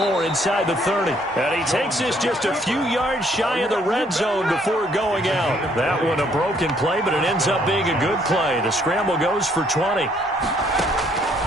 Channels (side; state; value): both; normal; correlation 0.66